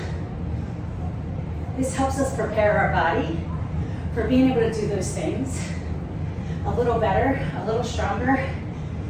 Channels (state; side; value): identical; both; correlation 1.00